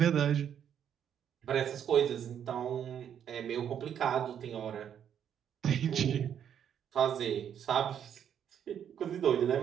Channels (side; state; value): left; quieter; 9.0 dB